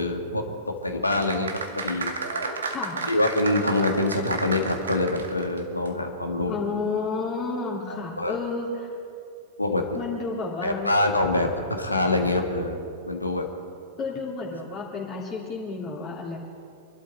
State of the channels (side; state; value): both; inverted; correlation -0.45